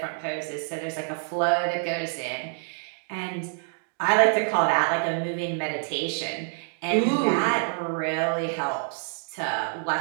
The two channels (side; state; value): left; silent; 58 dB below the other